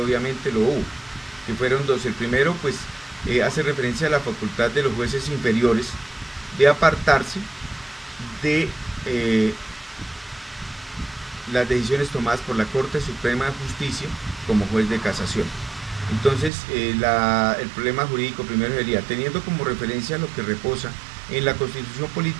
lo hubo, que fueron dos. El primero pues hace referencia a la facultad de los jueces inferiores de apartarse de las decisiones tomadas por la Corte Suprema de Justicia como juez de casación. Entonces el problema jurídico primero sería: teniendo como referencia lo que reposa en la Constitución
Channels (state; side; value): drops out; left; at 16.5 s